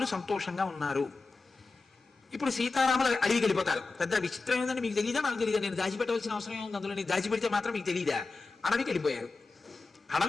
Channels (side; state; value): right; quieter; 3.8 dB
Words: సంతోషంగా ఉన్నారు. ఇప్పుడు సీతారాములు అడవికి వెళ్ళిపోతారు. పెద్ద విచిత్రం ఏంటంటే, మీకు తెలియదా నాకు తెలియదా, నేను దాచిపెట్టవలసిన అవసరం ఏముంది అందులో, నేను దాచిపెడితే మాత్రం మీకు తెలియదా? అడవికి వెళ్ళిపోయారు.